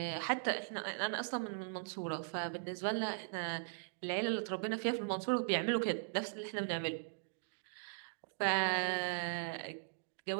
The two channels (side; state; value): left; silent; digital silence